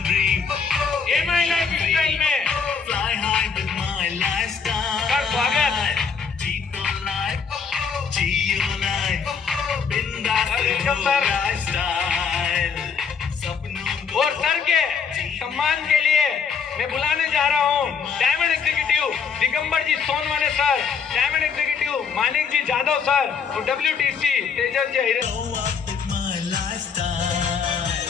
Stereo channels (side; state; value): right; quieter; 6.1 dB